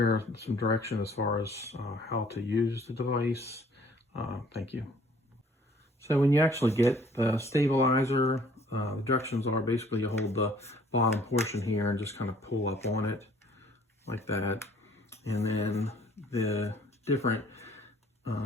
some direction as far as how to use the device. Thank you. So when you actually get the stabilizer, the directions are basically you hold the bottom portion here and just kind of pull up on it like that. And then the different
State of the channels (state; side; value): normal; both; correlation 0.57